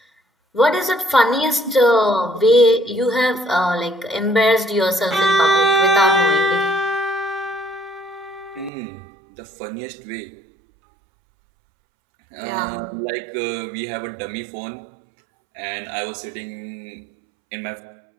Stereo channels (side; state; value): left; drops out; at 8.7 s